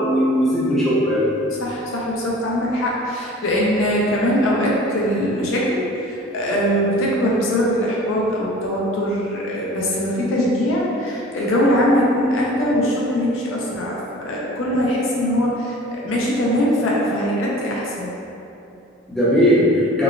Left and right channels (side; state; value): both; normal; correlation 0.45